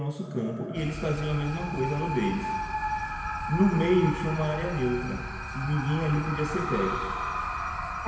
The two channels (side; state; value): both; identical; correlation 1.00